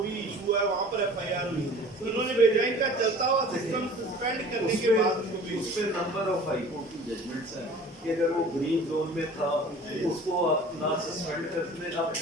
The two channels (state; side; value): normal; both; correlation 0.45